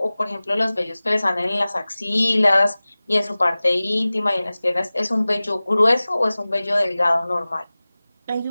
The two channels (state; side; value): inverted; both; correlation -0.98